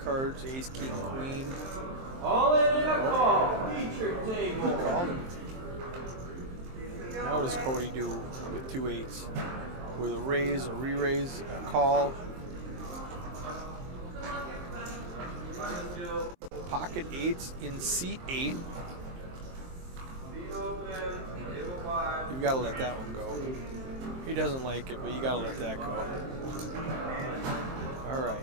ace, king, queen. All in and a call. Feature table. He called him. Now what does Cody do with 2 8s? With a raise, a re-raise, a call. Pocket 8s in seat 8. You've got to let that one go. He doesn't like it, but you got to let that go. All right.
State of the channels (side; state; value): left; late; 23 ms